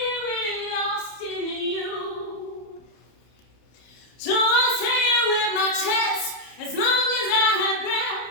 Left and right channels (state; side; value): late; right; 31 ms